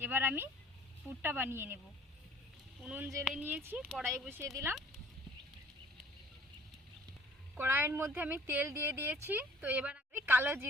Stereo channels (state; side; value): normal; both; correlation 0.52